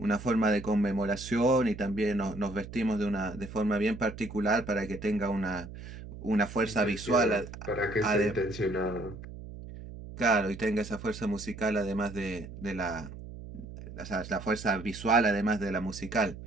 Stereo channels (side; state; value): right; noise; hum, 12 dB below the sound